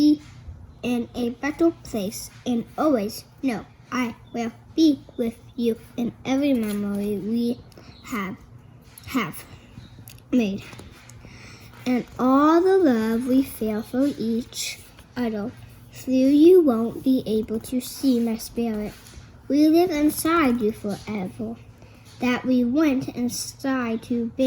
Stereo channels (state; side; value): identical; both; correlation 1.00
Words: in a better place, and always know I will be with you in every memory we have made, and all the love we feel for each other. Though you won't be able to see my spirit, we live inside you forever. That we went inside to